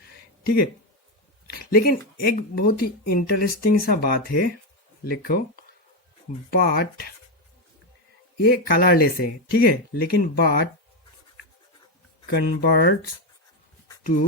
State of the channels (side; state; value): both; normal; correlation 0.09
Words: ठीक है, लेकिन एक बहुत ही इंटरेस्टिंग सा बात है, लिखो, बट ये कलरलेस है, ठीक है, लेकिन but converts